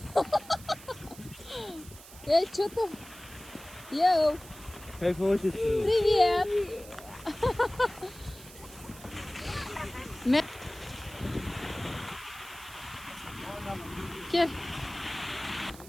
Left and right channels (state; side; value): noise; right; hiss, 18 dB below the sound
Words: Эй, что там? Йоу, Кайфовать. привет! Кел.